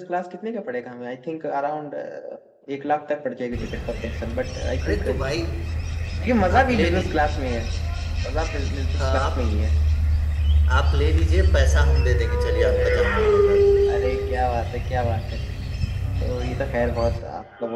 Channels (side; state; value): both; identical; correlation 1.00